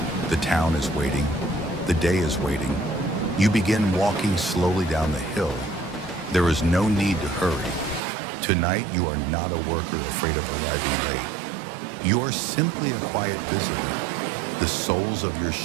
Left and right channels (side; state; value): left; drops out; at 8.0 s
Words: the town is waiting, the day is waiting. You begin walking slowly down the hill. There is no need to hurry. Tonight, you are not a worker afraid of arriving late. You are simply a quiet visitor. The soles of your